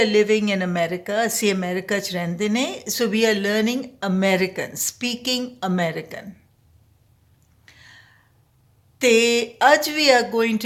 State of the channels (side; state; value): both; identical; correlation 1.00